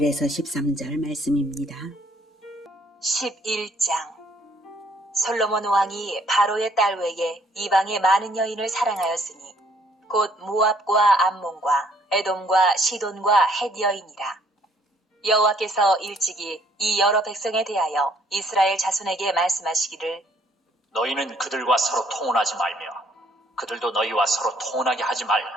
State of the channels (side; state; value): both; normal; correlation 0.63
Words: 13절 말씀입니다. 11장 솔로몬 왕이 바로의 딸 외에 이방의 많은 여인을 사랑하였으니 곧 모압과 암몬과 에돔과 시돈과 헷 여인이라. 여호와께서 일찍이 이 여러 백성에 대하여 이스라엘 자손에게 말씀하시기를 너희는 그들과 서로 통혼하지 말며 그들도 너희와 서로 통혼하게 하지